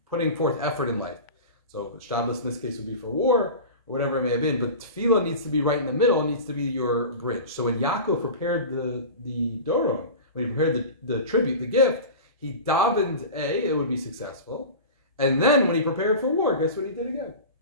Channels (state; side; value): inverted; both; correlation -0.32